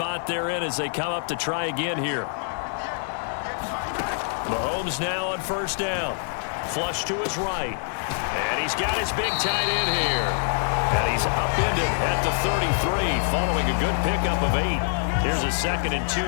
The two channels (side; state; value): right; silent; digital silence